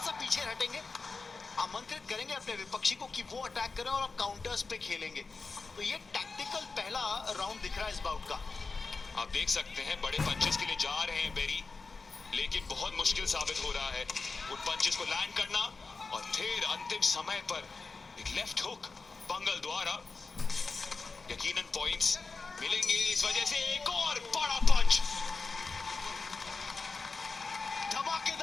पीछे हटेंगे, आमंत्रित करेंगे अपने विपक्षी को कि वो अटैक करें और आप काउंटर्स पे खेलेंगे। तो ये टैक्टिकल पहला राउंड दिख रहा है इस बाउट का। आप देख सकते हैं बड़े पंचेस के लिए जा रहे हैं बेरी, लेकिन बहुत मुश्किल साबित हो रहा है उन पंचेस को लैंड करना। और फिर अंतिम समय पर एक लेफ्ट हुक पंगल द्वारा, यकीनन पॉइंट्स मिलेंगे इस वजह से। एक और बड़ा पंच,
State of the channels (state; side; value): quieter; right; 4.2 dB